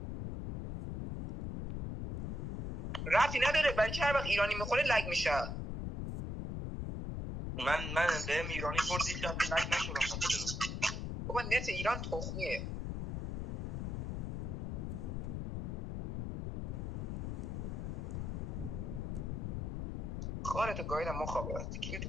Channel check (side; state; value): left; noise; rumble, 3 dB below the sound